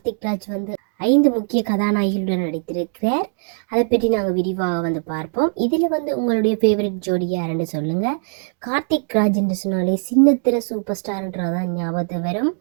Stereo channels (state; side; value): silent; left; 64 dB below the other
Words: ராஜ் 5 முக்கிய கதாநாயகிகளுடன் நடித்திருக்கிறார். அதை பற்றி நாங்கள் விரிவாக பார்ப்போம். இதில் உங்களுடைய ஃபேவரட் ஜோடி யாருன்னு சொல்லுங்க. கார்த்திக் ராஜ் என்று சொன்னாலே சின்னத்திர சூப்பர் ஸ்டார்ன்றதான் ஞாபகத்து வரும்.